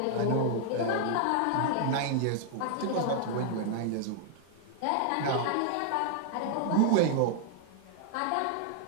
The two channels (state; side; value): different; both; correlation 0.00